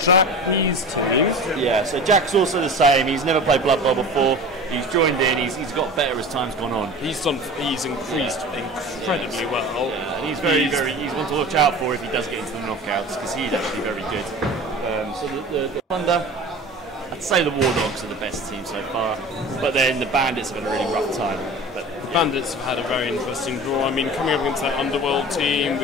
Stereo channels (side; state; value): both; normal; correlation 0.36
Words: Jack's team. Yeah, so Jack's also the same. He's never played Blood Bowl before. He's joined in. He's got better as time's gone on. He's increased incredibly well. Yeah, and he's he's one to watch out for if he does get into the knockouts, because he's actually very good. So the Thunder, I'd say the War Dogs are the best team so far, but then the Bandits have had a really rough time. But the Bandits have had a very interesting draw. I mean, coming up against that Underworld team